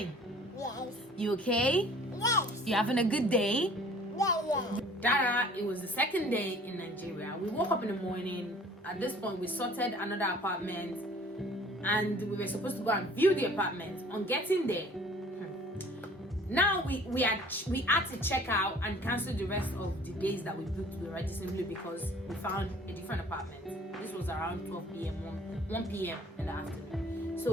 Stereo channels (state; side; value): normal; both; correlation 0.51